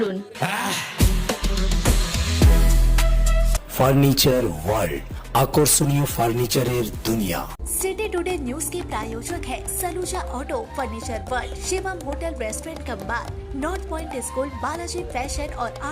ফার্নিচার ওয়ার্ল্ড, আকর্ষণীয় ফার্নিচারের দুনিয়া। सिटी टुडे न्यूज के प्रायोजक है Saluja auto, furniture world, Shivam hotel restaurant cum bar, north point school, Balaji fashion और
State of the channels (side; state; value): both; identical; correlation 1.00